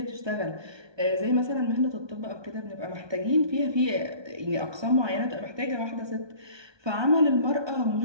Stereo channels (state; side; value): late; left; 1.2 ms